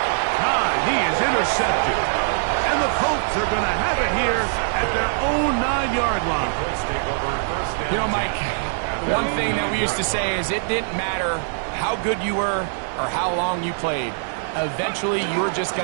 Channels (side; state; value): left; silent; digital silence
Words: time, he is intercepted. And the Colts are going to have it here at their own 9-yard line. You know, Mike, one thing that we used to say is it didn't matter how good you were or how long you played. Eventually, you're just